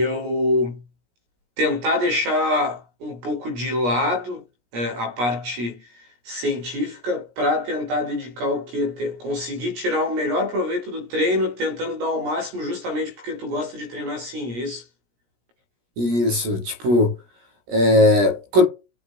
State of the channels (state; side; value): late; left; 17 ms